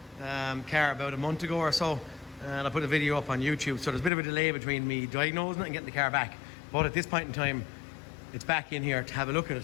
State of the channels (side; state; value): right; drops out; at 4.1 s